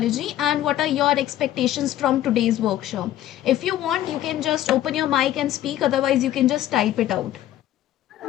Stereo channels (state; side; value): quieter; right; 13.0 dB